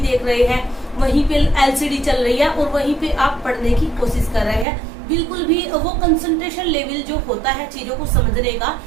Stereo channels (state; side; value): drops out; left; at 4.7 s